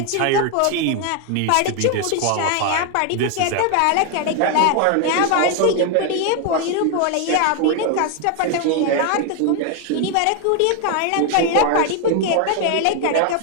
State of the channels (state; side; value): different; both; correlation 0.01